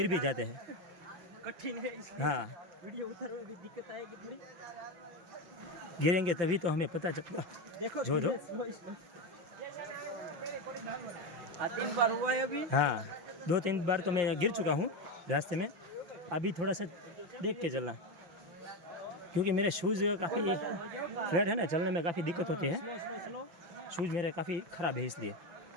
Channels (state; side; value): late; left; 5.8 ms